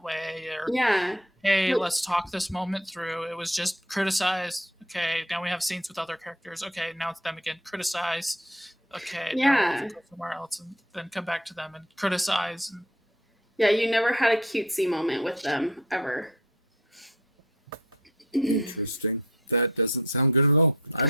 way," or Yeah. "Hey, let's talk this moment through." It was just criticize. Okay, now we have scenes with other characters. Okay, now it's them again. Criticize. Okay, now we go somewhere else and then come back to them and criticize. Yeah, you never had a cutesy moment with them, ever. Interesting. That doesn't sound good at all. I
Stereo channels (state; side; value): normal; both; correlation 0.48